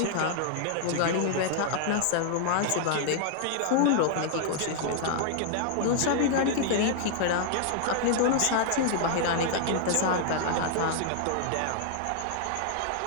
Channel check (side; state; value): both; different; correlation 0.00